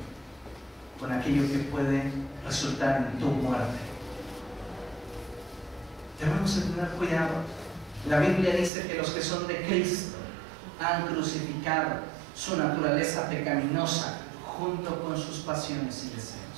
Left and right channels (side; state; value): left; drops out; at 8.7 s